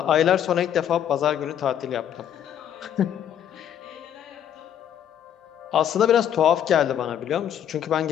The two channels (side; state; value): right; quieter; 9.8 dB